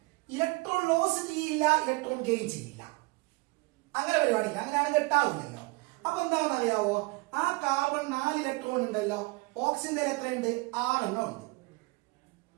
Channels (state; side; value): quieter; left; 25.2 dB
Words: ഇലക്ട്രോൺ ലോസ് ചെയ്യില്ല, ഇലക്ട്രോൺ ഗെയിൻ ചെയ്യില്ല. അങ്ങനെ പരിപാടിയില്ല, അങ്ങനെയാണ് കെട്ടാവില്ലല്ലോ. അപ്പൊ എന്താണെന്ന് അറിയാവോ? ആ കാർബൺ 4 ഇലക്ട്രോൺ ഉണ്ടല്ലോ, ഓക്സിജന്റെ എത്രയുണ്ട്? 6 എണ്ണം ഉണ്ട്.